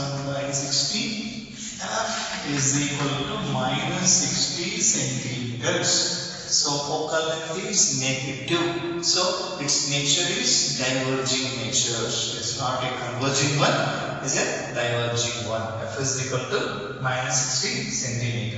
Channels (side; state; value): both; identical; correlation 1.00